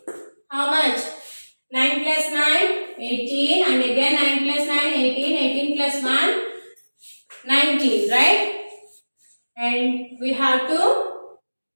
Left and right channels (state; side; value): inverted; both; correlation -1.00